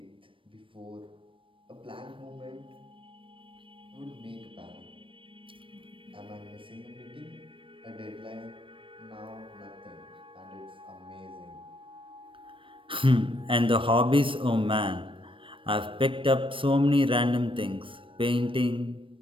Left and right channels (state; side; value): late; left; 0.25 ms